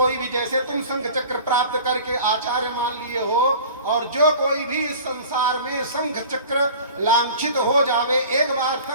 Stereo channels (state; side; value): inverted; both; correlation -0.42